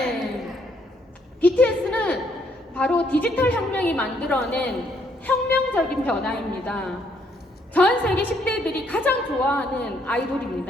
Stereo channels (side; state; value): both; normal; correlation 0.70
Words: BTS는 바로 디지털 혁명이 만들어낸 혁명적인 변화입니다. 전 세계 10대들이 가장 좋아하는